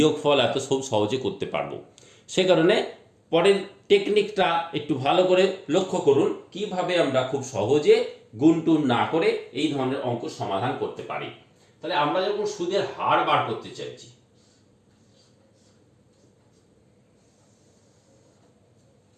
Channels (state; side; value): identical; both; correlation 1.00